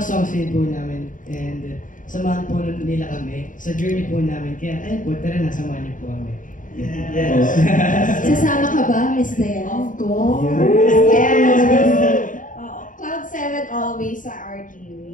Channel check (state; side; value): late; right; 0.38 ms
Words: din po namin, and samahan po nila kami sa journey po namin. Kaya ayun po, tara na, samahan niyo po kami. Yes. Sasama ka ba, Miss Diane? Of course. Yes. Cloud 7 always sa RTV.